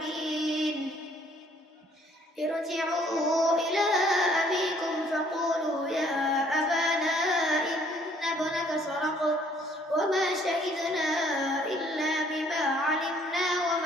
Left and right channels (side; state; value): both; normal; correlation 0.62